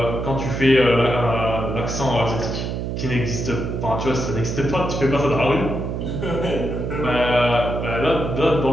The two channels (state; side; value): noise; right; hum, 3 dB below the sound